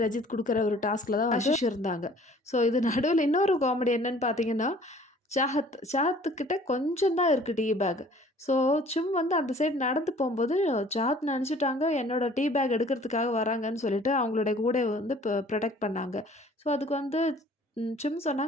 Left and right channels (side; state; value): both; normal; correlation 0.53